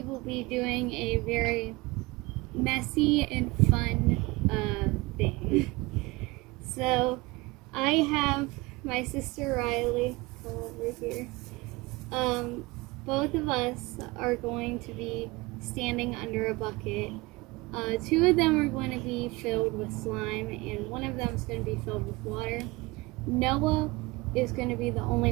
will be doing a very messy and fun thing. So I have my sister Riley, come over here. Both of us are going to be standing under a bucket. Two of them are going to be filled with slime, and one of them is going to be filled with water. Noah is going to be the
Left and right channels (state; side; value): quieter; left; 23.0 dB